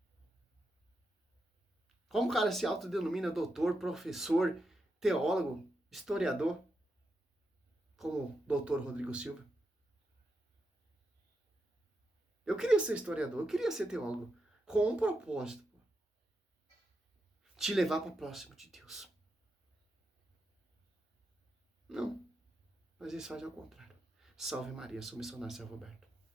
Como o cara se autodenomina doutor, professor, teólogo, historiador, como o doutor Rodrigo Silva? Eu queria ser historiador, eu queria ser teólogo, com um propósito, pô. Te levar para próximo de Deus. Não, mas eles fazem ao contrário. Salve Maria, sou missionário São Roberto.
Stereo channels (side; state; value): both; normal; correlation 0.86